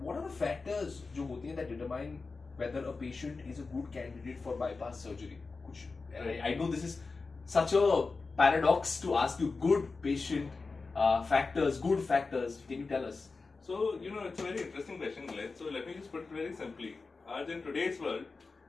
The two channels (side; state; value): right; quieter; 4.1 dB